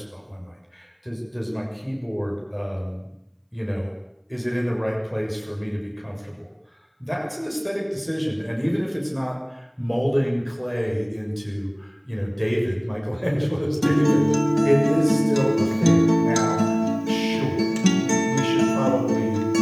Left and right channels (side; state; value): both; identical; correlation 1.00